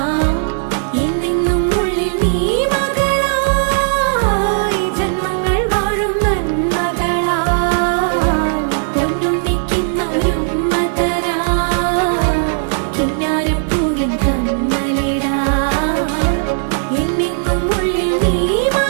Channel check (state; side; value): silent; left; digital silence